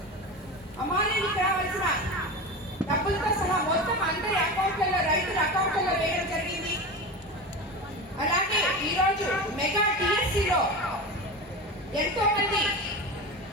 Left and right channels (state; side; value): normal; both; correlation 0.26